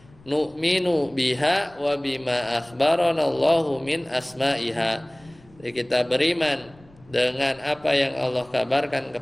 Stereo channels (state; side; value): noise; left; rumble, 27 dB below the sound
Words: Nu'minu biha wa bima akhbarana Allahu min asma'iha. Jadi kita beriman dengan apa yang Allah kabarkan